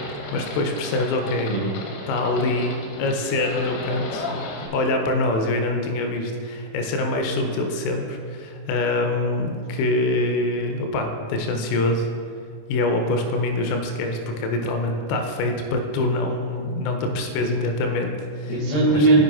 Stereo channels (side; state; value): right; late; 27 ms